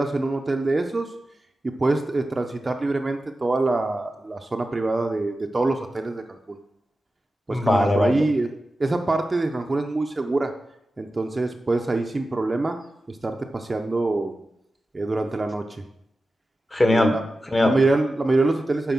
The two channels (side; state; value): both; normal; correlation 0.93